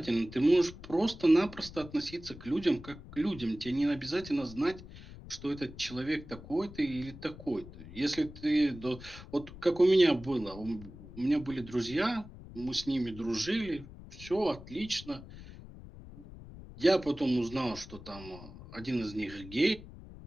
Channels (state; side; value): noise; left; rumble, 16 dB below the sound